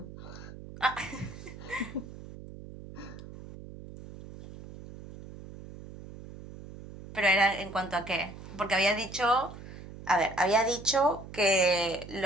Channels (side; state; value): right; noise; hum, 14 dB below the sound